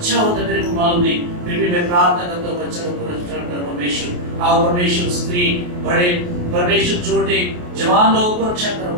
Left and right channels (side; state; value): left; late; 28 ms